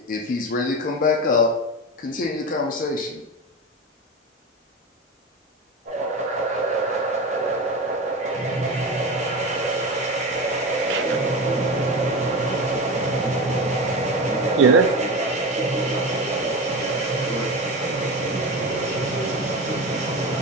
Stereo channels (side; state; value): both; normal; correlation 0.24